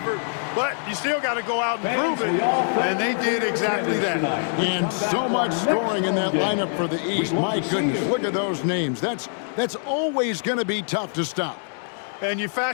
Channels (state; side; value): silent; right; digital silence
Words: but you still got to go out and prove it, and they did exactly that. And so much scoring in that lineup for the East. My goodness, look at those names. That's always going to be tough to stop. And you